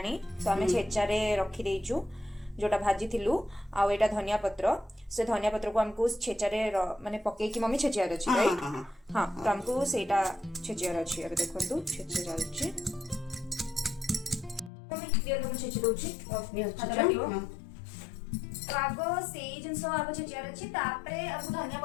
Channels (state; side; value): drops out; right; at 14.7 s